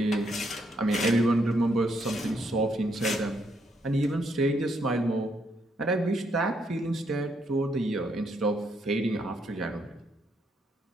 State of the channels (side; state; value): both; normal; correlation 0.75